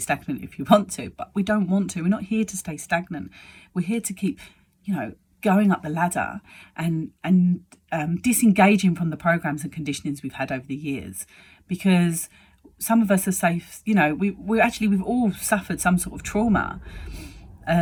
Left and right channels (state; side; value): identical; both; correlation 1.00